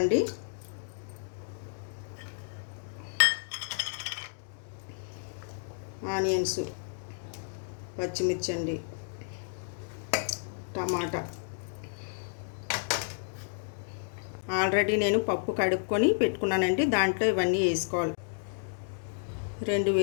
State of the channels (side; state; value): right; silent; digital silence